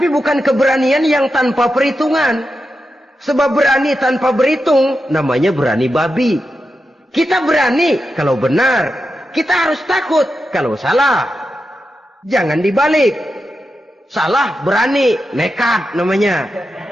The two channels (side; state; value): both; normal; correlation 0.89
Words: bukan keberanian yang tanpa perhitungan. Sebab berani tanpa berhitung namanya berani babi. Kita berani kalau benar, kita harus takut kalau salah. Jangan dibalik. Salah berani, nekat namanya.